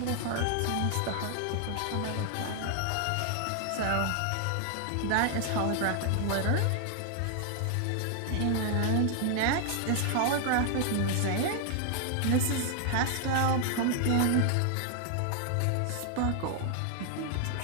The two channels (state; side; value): different; both; correlation 0.00